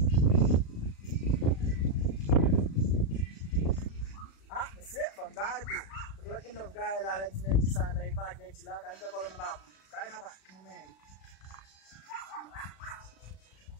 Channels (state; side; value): late; right; 36 ms